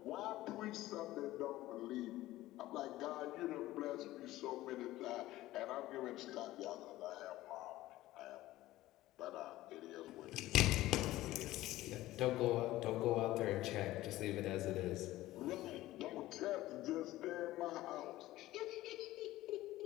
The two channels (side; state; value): right; quieter; 16.3 dB